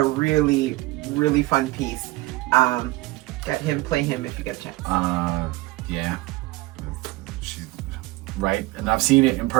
really really fun piece. Play him if you get a chance. Yeah, she's right, and I've seen it in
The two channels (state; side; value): quieter; left; 20.0 dB